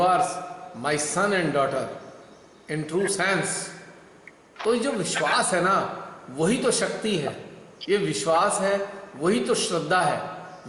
are my son and daughter in true sense. तो ये जो विश्वास है ना, वही तो शक्ति है। ये विश्वास है, वही तो श्रद्धा है।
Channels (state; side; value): identical; both; correlation 1.00